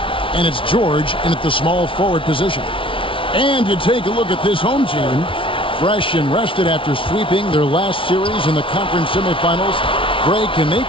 And it's George in at the small forward position. And you take a look at this home team. Fresh and rested after sweeping their last series in the conference semifinals. Greg, can they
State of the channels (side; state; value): right; late; 0.25 ms